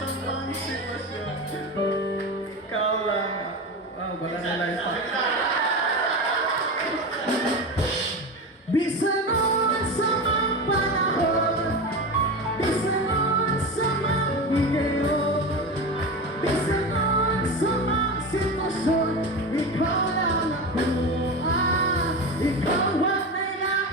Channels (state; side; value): normal; both; correlation 0.23